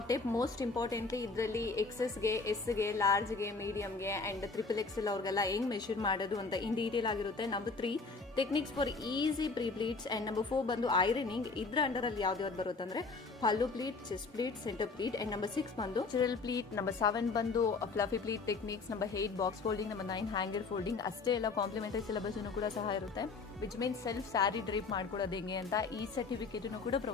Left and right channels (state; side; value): quieter; right; 4.2 dB